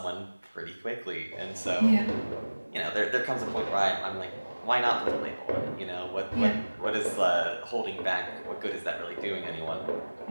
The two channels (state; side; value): inverted; both; correlation -1.00